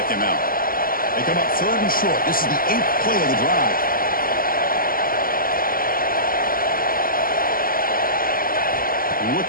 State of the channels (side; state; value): right; late; 0.42 ms